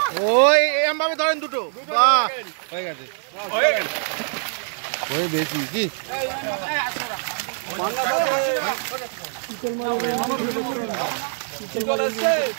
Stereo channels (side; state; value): left; silent; digital silence